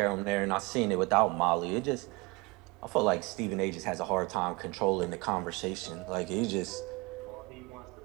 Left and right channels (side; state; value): left; quieter; 25.9 dB